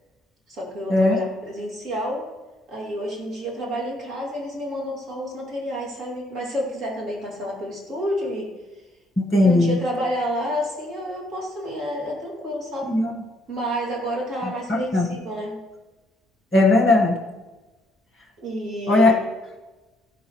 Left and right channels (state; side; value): normal; both; correlation 0.70